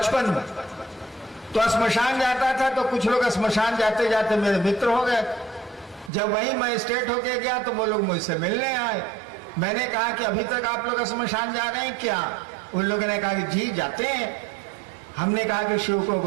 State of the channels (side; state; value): left; drops out; at 6.1 s